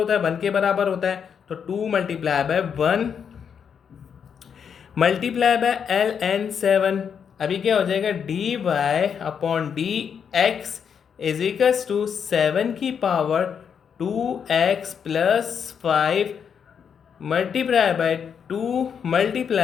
है, 1 के बराबर होता है। तो 2 multiply by 1 multiply by ln 7। अभी क्या हो जाएगा, D Y upon D x is equals to 7 की power 2x plus 5 multiply by 2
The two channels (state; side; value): quieter; right; 7.3 dB